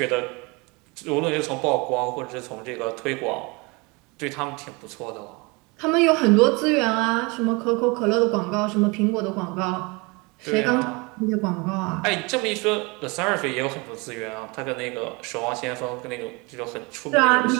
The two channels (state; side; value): quieter; left; 27.5 dB